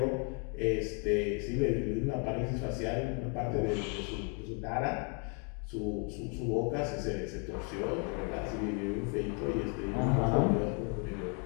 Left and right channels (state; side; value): quieter; right; 37.8 dB